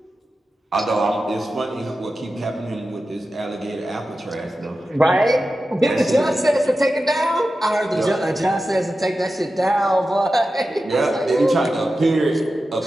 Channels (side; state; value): both; normal; correlation 0.92